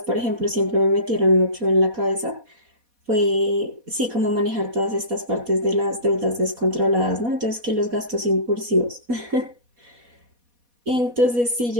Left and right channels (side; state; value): left; late; 4.1 ms